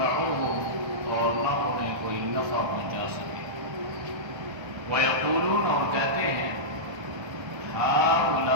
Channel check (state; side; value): late; left; 1.3 ms